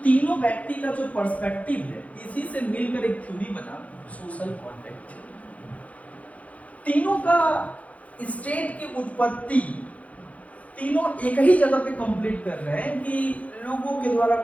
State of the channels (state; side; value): late; right; 0.067 ms